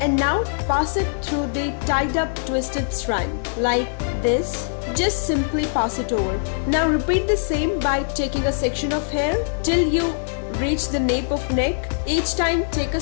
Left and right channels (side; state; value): right; silent; digital silence